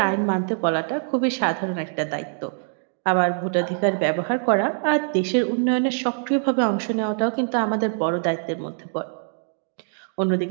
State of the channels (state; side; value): silent; left; digital silence